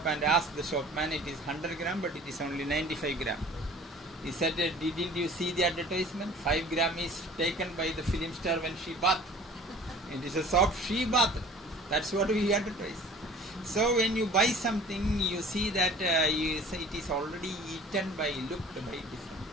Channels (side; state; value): both; normal; correlation 0.46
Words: and asked the shopman, it is 100 gram but it is only 95 gram. He said, didn't you see the advertisement? 5 gram is taken by the film star when she bathed. It is a soap she bathed. That's what we advertise. So when you buy something, you see that you say it is already eaten by, looked by different.